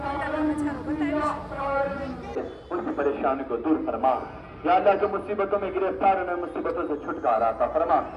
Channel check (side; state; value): both; identical; correlation 1.00